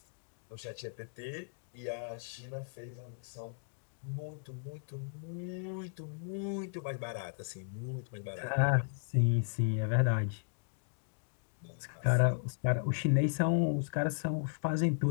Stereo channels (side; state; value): right; silent; digital silence